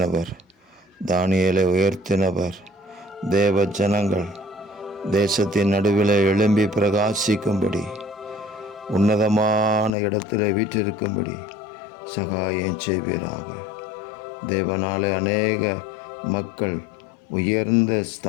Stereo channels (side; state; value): right; drops out; at 9.9 s